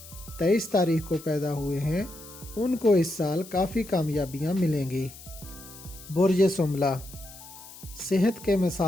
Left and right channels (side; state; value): left; noise; hiss, 17 dB below the sound